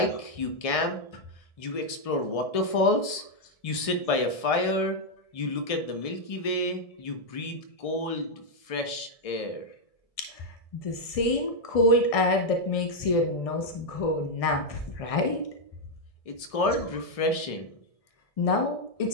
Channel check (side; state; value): right; late; 1.7 ms